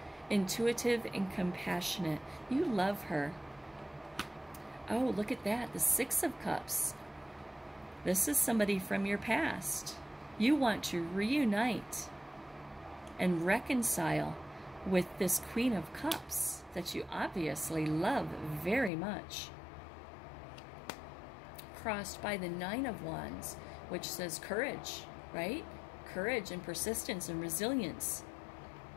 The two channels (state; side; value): drops out; right; at 18.9 s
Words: intuitive and compassionate. You love her. Oh, look at that, the Six of Cups. This is somebody from your past. You want to reunite and reconcile with this Queen of Cups that you obviously love very much. Crossed by the Nine of Wands, which says courage, right? Courage and persistence and resilience.